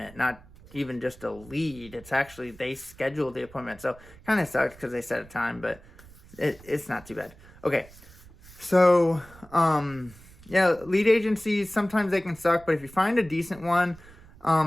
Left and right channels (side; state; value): right; noise; rumble, 22 dB below the sound